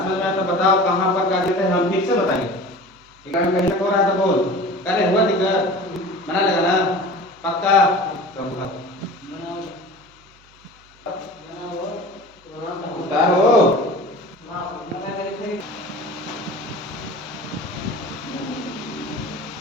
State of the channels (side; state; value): right; noise; hum, 29 dB below the sound